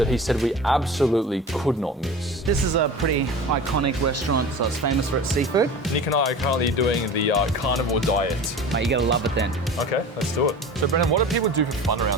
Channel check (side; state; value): both; normal; correlation 0.36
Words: he said we absolutely could not miss. This is a pretty iconic restaurant, so it's famous for its seafood. Nick and I are currently doing the carnivore diet. Mate, you gotta love it then. Okay, let's do it. So Brennan, what do people do for fun